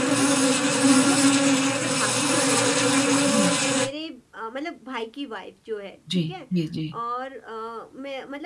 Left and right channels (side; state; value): both; identical; correlation 1.00